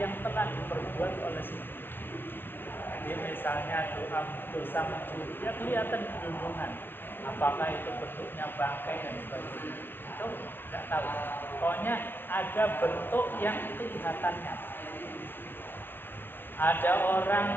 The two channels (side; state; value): right; late; 0.096 ms